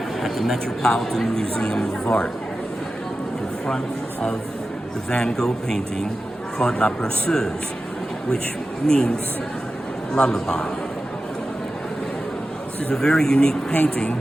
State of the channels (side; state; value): both; normal; correlation 0.94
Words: the Metropolitan Museum of Art in front of the Van Gogh painting called La Berceuse, which means lullaby. This is a very unique painting